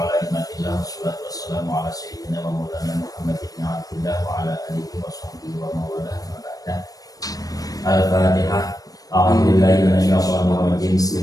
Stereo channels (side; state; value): right; late; 0.18 ms